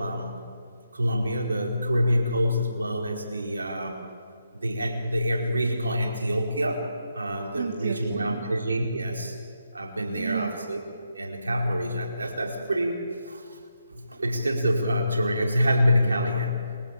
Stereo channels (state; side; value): inverted; both; correlation -0.83